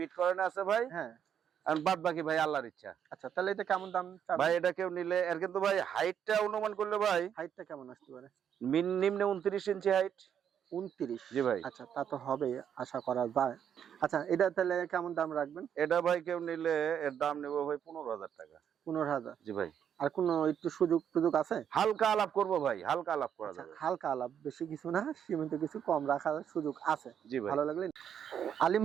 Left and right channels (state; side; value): quieter; left; 8.7 dB